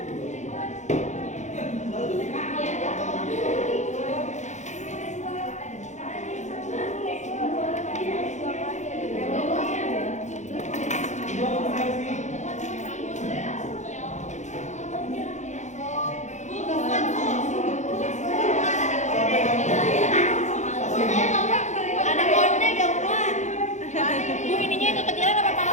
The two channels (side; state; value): right; late; 0.34 ms